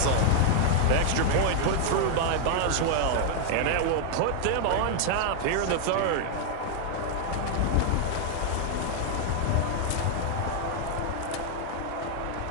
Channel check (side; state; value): both; different; correlation 0.00